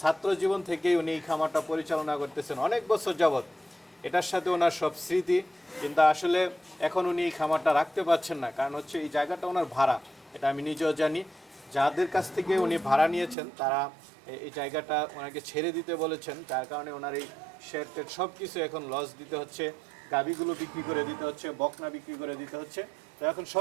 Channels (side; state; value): left; drops out; at 13.4 s